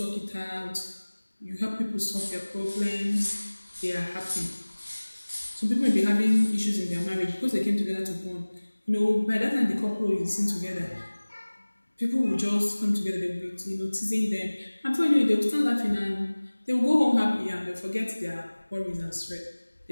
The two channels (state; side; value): inverted; both; correlation -1.00